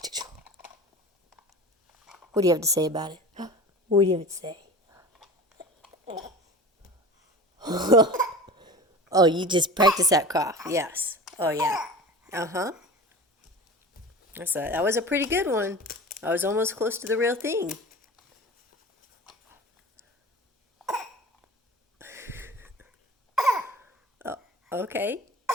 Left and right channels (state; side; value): normal; both; correlation 0.36